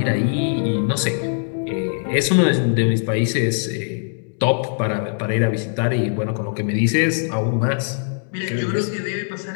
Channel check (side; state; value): right; silent; digital silence